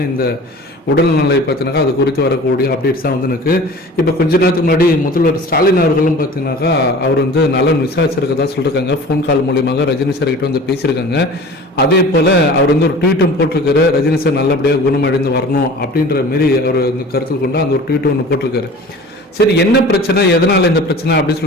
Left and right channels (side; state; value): both; normal; correlation 0.41